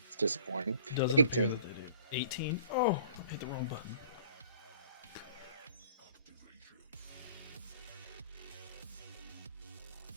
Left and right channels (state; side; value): inverted; both; correlation -0.51